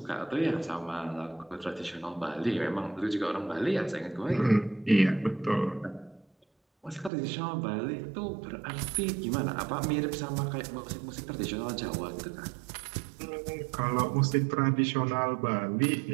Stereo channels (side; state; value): left; drops out; at 7.1 s